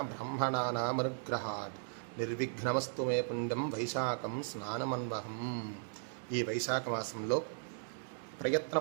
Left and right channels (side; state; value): left; silent; digital silence